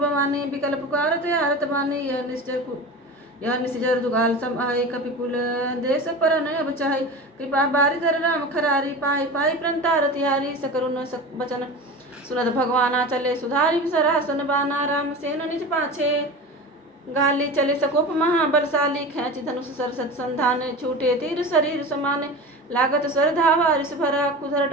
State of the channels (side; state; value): both; normal; correlation 0.30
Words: बिकल पुकारत हारत बानी यह निश्चर दुगाल सम आय कपि कुल देश पर नय बचाई कृपा बारी धर राम खरारी पाई पाई प्रंतार तिहारी सकरुन बचन सुनत भगवाना चले सुधारी सरासन बाना राम सेन निज पाछे गाली चले सकोप महाबलशाली खेच धनुष सरसत संधान छूटे तीर शरीर समाने लागत सर धावा रिस भरा कुधर